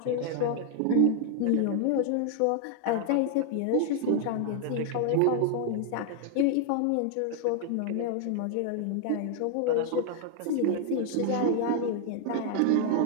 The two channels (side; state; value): both; different; correlation 0.00